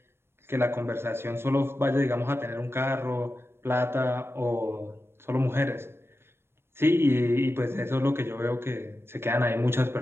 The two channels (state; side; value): late; left; 0.12 ms